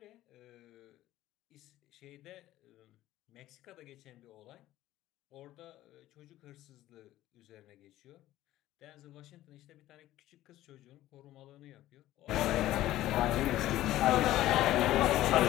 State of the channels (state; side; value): quieter; right; 14.8 dB